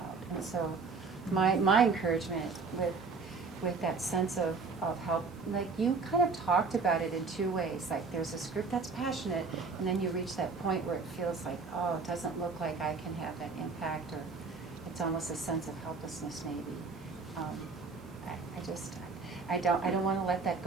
And so my encouragement with that sense of help, like you kind of talked about it in two ways. Like there's this group that's passionate, and then you reach that point where it feels like, oh, it doesn't look like I can have that impact, or it's almost a sense of helplessness maybe. I don't want to let that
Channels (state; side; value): quieter; left; 4.6 dB